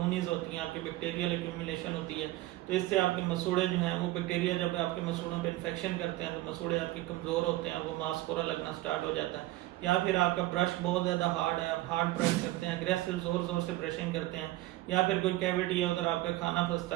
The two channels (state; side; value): quieter; left; 17.2 dB